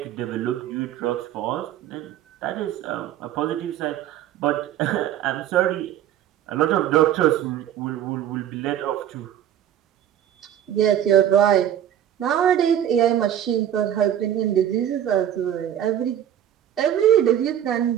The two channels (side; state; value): left; quieter; 10.7 dB